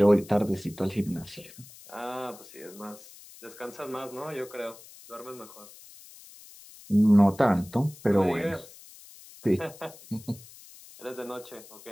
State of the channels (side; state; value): left; noise; hiss, 20 dB below the sound